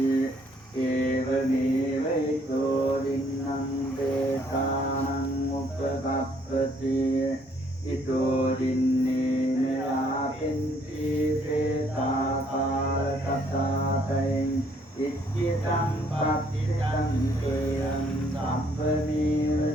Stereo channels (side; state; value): both; normal; correlation 0.66